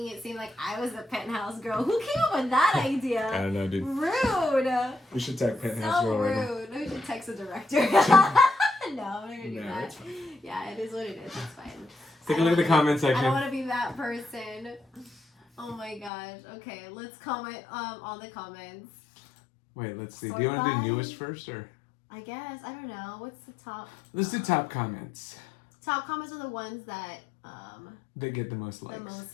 it seem like I was the penthouse girl. Who came up with that idea? I don't know, dude. Rude. We should tag penthouse So girl right now. rude. We should text the director. No, I'm not gonna do No, that. it's fine. Yeah, it is what it is. It's fine. Take a look at the comment I don't section. want to be that person. Oh my gosh. Okay, let's comment on the comments. Wait, let's see. Sort Do you want to by- do newest first, or I guess. I don't know. What's the top? let's do top comments? Top comments are the ones that They get the most likes. the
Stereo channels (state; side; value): drops out; right; at 16.1 s